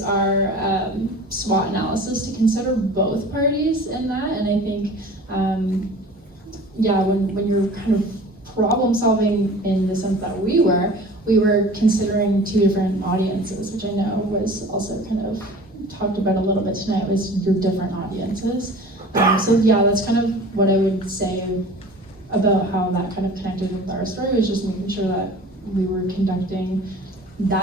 our SWOT analysis to consider both parties in that. And I think, when you're kind of problem solving in the sense that we were considering 2 different audiences, which I know was also kind of talked about a little bit tonight, was your different audiences. So yeah, that's kind of what I would say about how that kind of connected with our story, was just making sure that we were conducting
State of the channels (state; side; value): normal; both; correlation 0.42